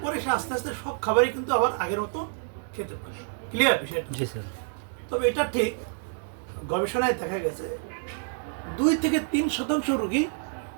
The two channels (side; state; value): left; silent; digital silence